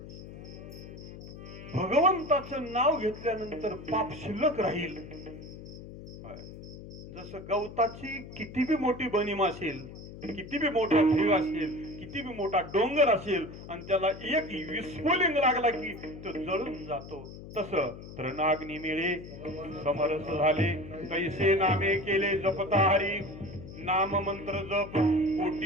भगवंताचं नाव घेतल्यानंतर पाप शिल्लक राहील. जसं गवताची किती बी मोठी बनीम असेल, किती बी मोठा ढीग असेल, किती बी मोठा डोंगर असेल आणि त्याला एक विस्फोलिंग लागला की तो जळून जातो, तसं तृणाग्नी मिळे समरस झाले कैसे नामे केले जपता हरी. नाम मंत्र जप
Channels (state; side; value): noise; left; hum, 14 dB below the sound